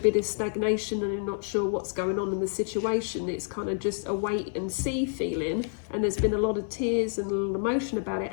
of stagnation and you're not sure what's going on in the situation, it's kind of just a wait and see feeling, and there's been a lot of tears and a little emotion about it.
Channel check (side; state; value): right; silent; 59 dB below the other